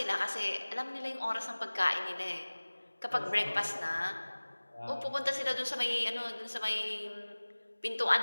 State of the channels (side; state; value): both; inverted; correlation -1.00